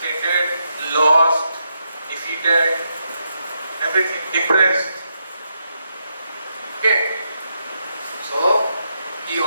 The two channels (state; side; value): inverted; both; correlation -0.82